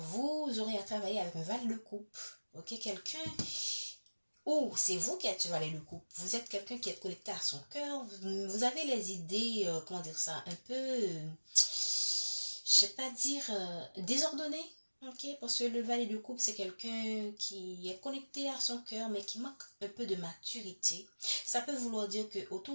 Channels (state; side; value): inverted; both; correlation -1.00